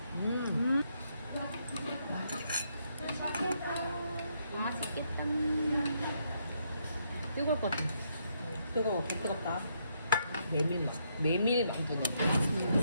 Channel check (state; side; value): inverted; both; correlation -0.75